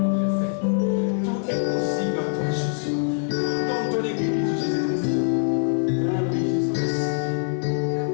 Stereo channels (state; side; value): silent; right; digital silence